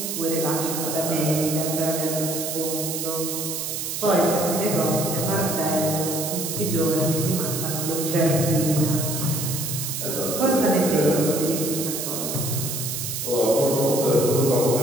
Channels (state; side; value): noise; right; hiss, 4 dB below the sound